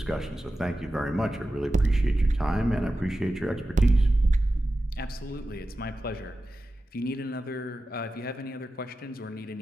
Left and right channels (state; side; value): normal; both; correlation 0.93